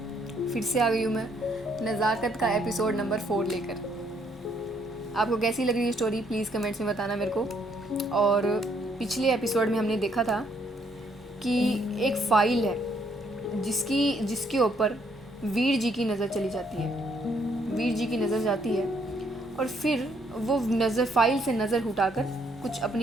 फिर से आ गई हूँ मैं नज़ाकत का एपिसोड नंबर 4 लेकर। आपको कैसी लग रही है स्टोरी, प्लीज़ कमेंट्स में बताना मेरे को। और पिछले एपिसोड में हमने देखा था कि एक फ़ाइल है जिसके ऊपर वीर जी की नज़र चली जाती है। वीर जी की नज़र जाती है और फिर वो फ़ाइल से नज़र उठाकर कुछ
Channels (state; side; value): normal; both; correlation 0.70